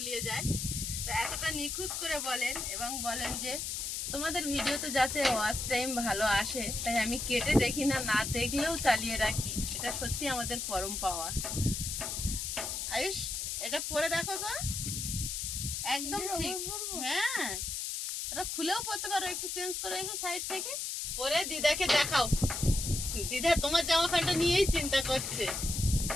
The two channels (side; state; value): left; noise; hiss, 3 dB below the sound